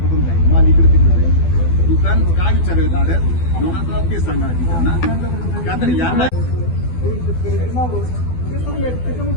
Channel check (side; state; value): right; late; 12 ms